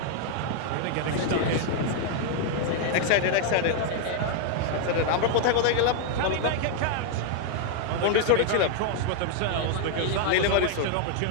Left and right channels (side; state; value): both; different; correlation 0.00